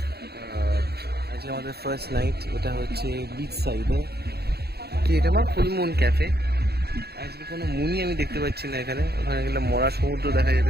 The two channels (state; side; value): late; left; 0.47 ms